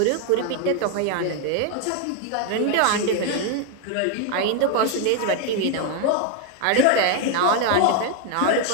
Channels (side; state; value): both; different; correlation 0.01